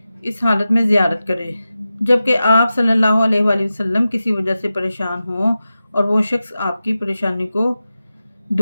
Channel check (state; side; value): inverted; both; correlation -0.93